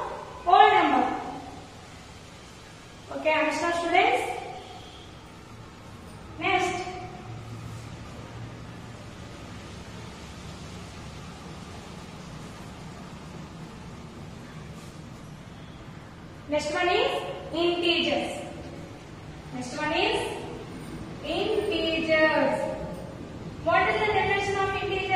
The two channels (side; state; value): both; identical; correlation 1.00